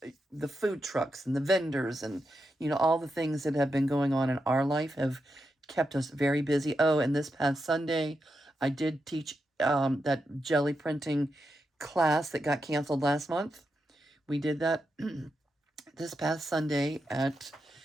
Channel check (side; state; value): both; normal; correlation 0.86